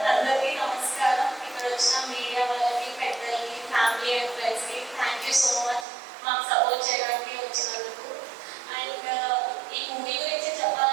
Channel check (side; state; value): left; drops out; at 5.9 s